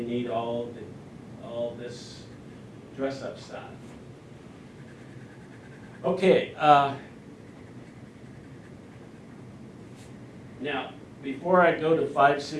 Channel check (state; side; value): identical; both; correlation 1.00